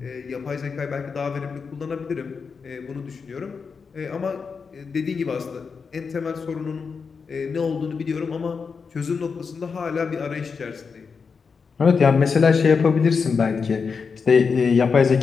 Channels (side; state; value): right; quieter; 5.4 dB